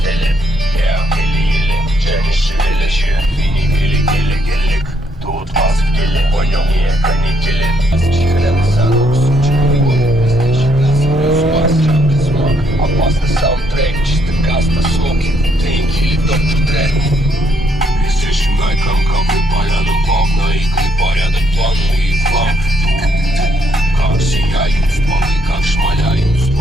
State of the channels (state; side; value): normal; both; correlation 0.72